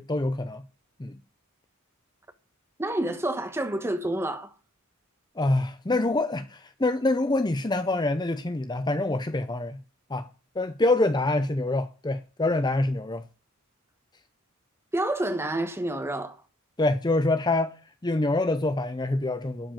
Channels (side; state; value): both; normal; correlation 0.70